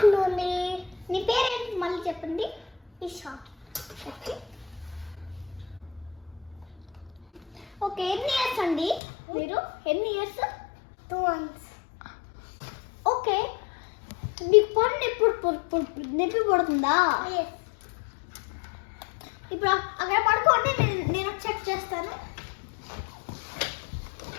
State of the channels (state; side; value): drops out; right; at 9.0 s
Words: నీ పేరేంటి మళ్ళీ చెప్పండి. ఈషా. ఓకే, ఎన్ని ఇయర్స్ అండి మీరు? ఎన్ని ఇయర్స్? 2 months. ఓకే, మీకు పన్ను ఎప్పుడు నొప్పి పడుతుందా? ఇప్పుడు అక్కడ పడుకోండి, నేను చెక్ చేస్తాను.